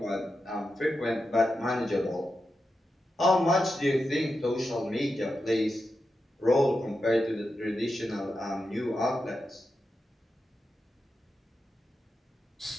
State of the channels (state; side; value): normal; both; correlation 0.89